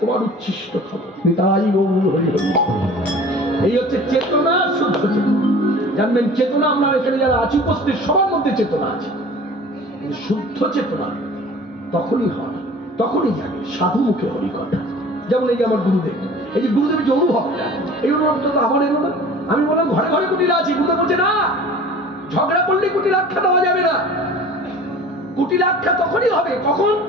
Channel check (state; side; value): normal; both; correlation 0.44